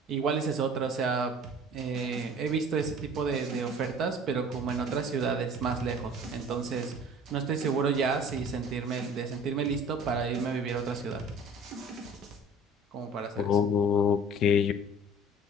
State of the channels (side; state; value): both; normal; correlation 0.46